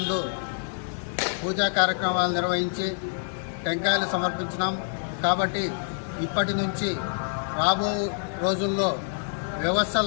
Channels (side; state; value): right; silent; digital silence